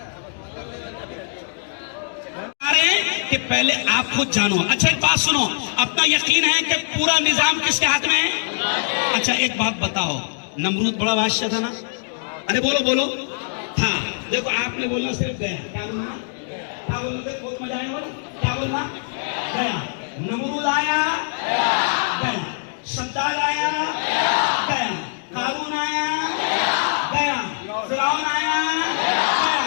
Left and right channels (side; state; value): right; silent; digital silence